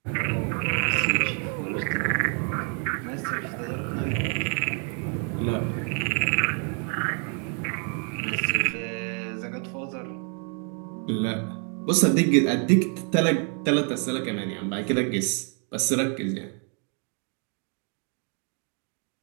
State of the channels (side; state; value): left; quieter; 39.9 dB